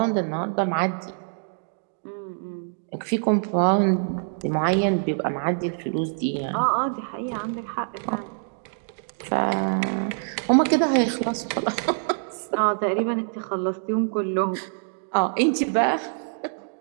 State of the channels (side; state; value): left; silent; digital silence